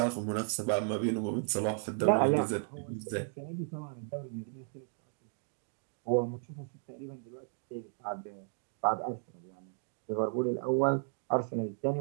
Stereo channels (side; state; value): left; silent; 55 dB below the other